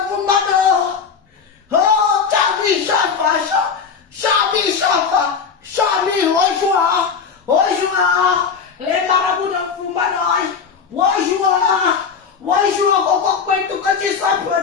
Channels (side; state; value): right; quieter; 6.0 dB